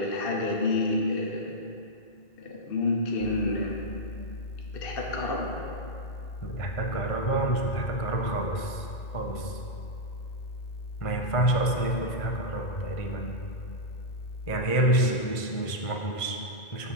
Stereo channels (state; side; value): late; right; 1.5 ms